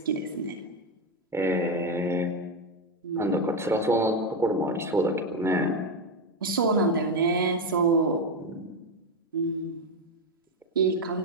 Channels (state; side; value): normal; both; correlation 0.09